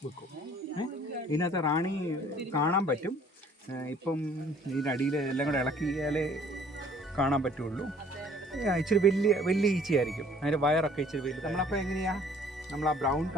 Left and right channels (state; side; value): normal; both; correlation 0.56